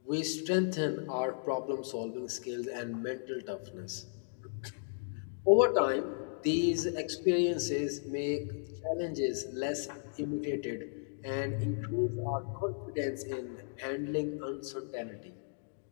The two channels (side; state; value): right; silent; digital silence